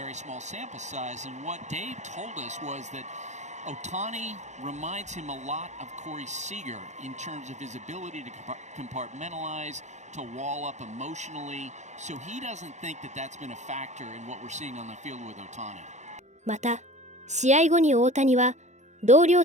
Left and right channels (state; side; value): late; left; 0.34 ms